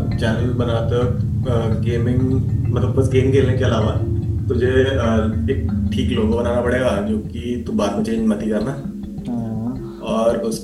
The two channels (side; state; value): both; identical; correlation 1.00